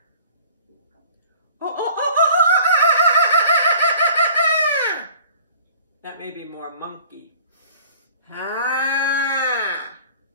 That may be more monkey. Ha!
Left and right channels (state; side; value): inverted; both; correlation -0.49